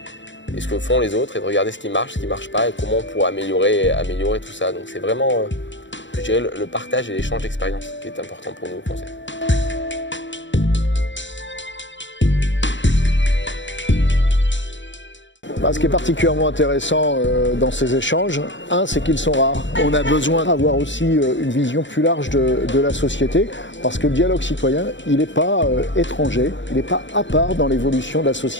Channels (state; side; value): late; right; 0.54 ms